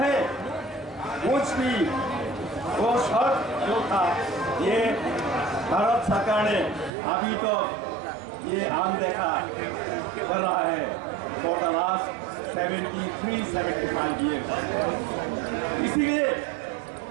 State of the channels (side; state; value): left; drops out; at 6.9 s